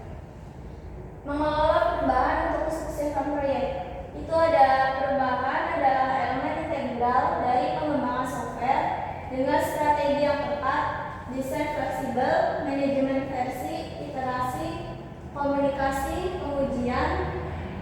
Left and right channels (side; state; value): both; identical; correlation 1.00